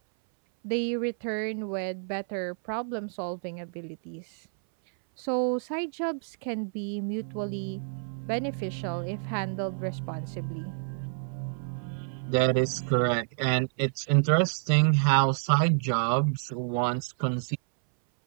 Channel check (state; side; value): silent; left; 59 dB below the other